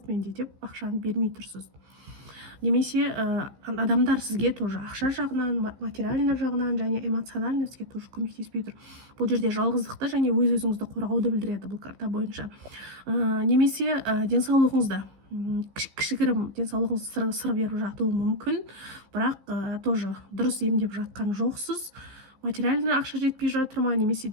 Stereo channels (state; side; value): late; left; 15 ms